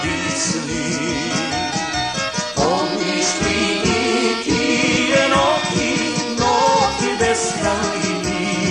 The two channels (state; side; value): identical; both; correlation 1.00